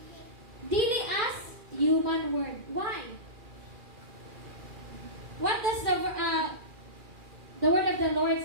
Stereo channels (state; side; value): late; left; 2.4 ms